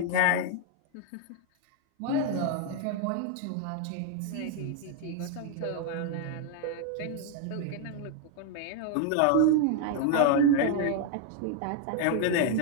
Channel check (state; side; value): different; both; correlation 0.00